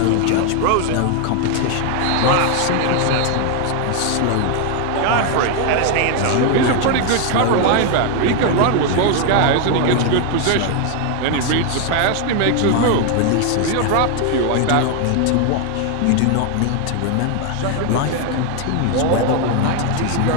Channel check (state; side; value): different; both; correlation 0.01